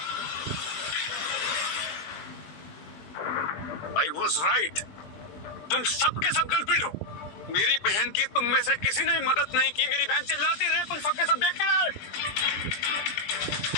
I was right. तुम सब के सब कल्प्रिट हो। मेरी बहन की तुम में से किसी ने मदद नहीं की। मेरी बहन चिल्लाती रही, तुम सबके सब देख रहे।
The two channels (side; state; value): right; late; 20 ms